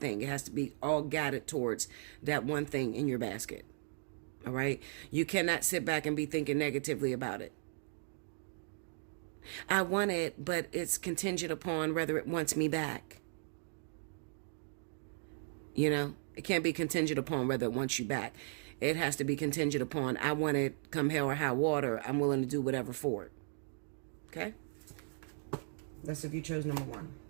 It has to be all guided towards that one thing in your basket. All right? You cannot sit back and be thinking negatively about it. I want it, but it's contingent upon whether it wants me back. You know, it can't be contingent upon whether it wants you back. It has to be contingent upon, I want it come hell or high water. I'm willing to do whatever for it. Okay? That's if you chose number 1.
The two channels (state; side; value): silent; left; digital silence